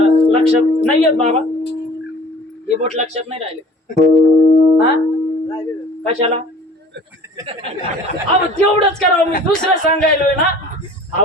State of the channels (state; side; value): normal; both; correlation 0.47